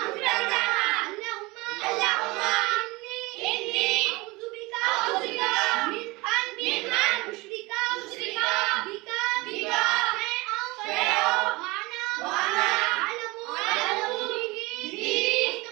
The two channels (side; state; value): left; quieter; 23.2 dB